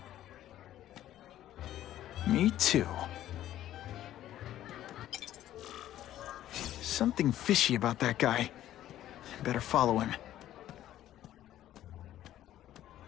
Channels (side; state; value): right; quieter; 12.8 dB